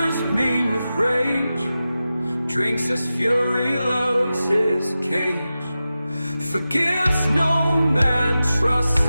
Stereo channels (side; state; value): both; inverted; correlation -0.93